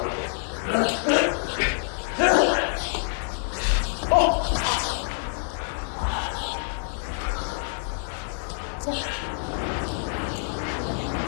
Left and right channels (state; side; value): silent; right; digital silence